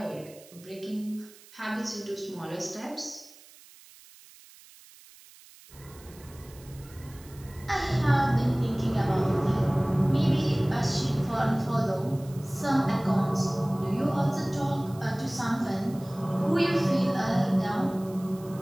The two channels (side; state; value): right; noise; hiss, 23 dB below the sound